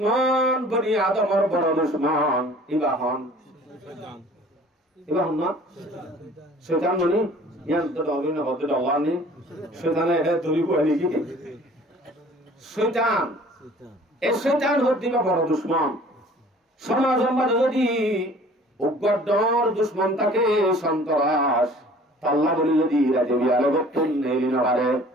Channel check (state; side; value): normal; both; correlation 0.50